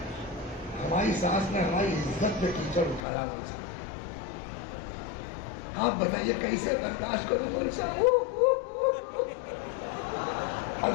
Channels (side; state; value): right; drops out; at 3.0 s